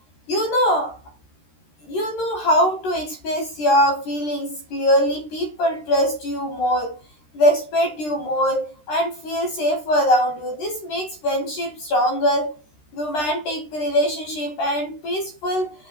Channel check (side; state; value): right; late; 13 ms